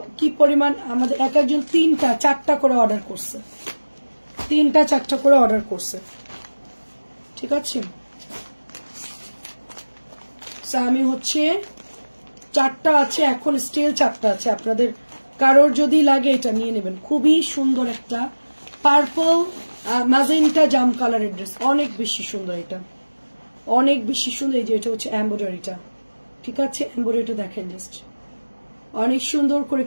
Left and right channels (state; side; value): inverted; both; correlation -1.00